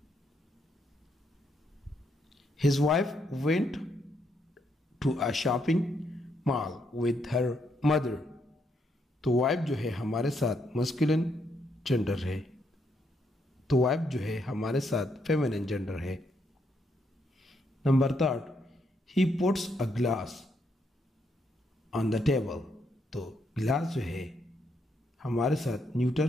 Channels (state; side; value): normal; both; correlation 0.76